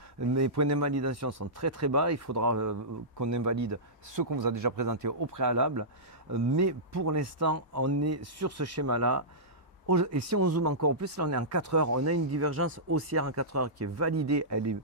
Mes points d'invalidation sont très bas, il faudra qu'on invalide ce qu'on vous a déjà présenté au préalable. Mais pour l'instant, on est sur ce schéma-là. Et si on zoome encore plus, là on est en 4 heures, on a une divergence haussière en 4 heures qui est validée, elle est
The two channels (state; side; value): normal; both; correlation -0.16